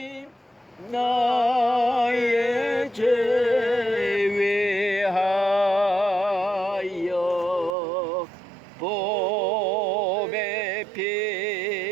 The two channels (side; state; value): left; drops out; at 7.8 s